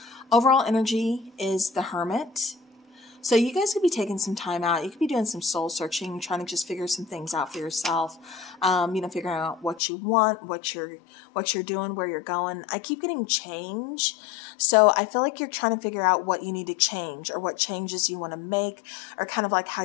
overall energy is the Hermit. So you guys could be taking some time out. You could be doing some soul searching, trying to just figure some things out for yourself. Figuring out what you want, what you're doing, where you're going. I keep getting change. So I feel like you're trying to figure out what you need to change or what changes you want to make or kind of like how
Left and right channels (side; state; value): right; drops out; at 9.8 s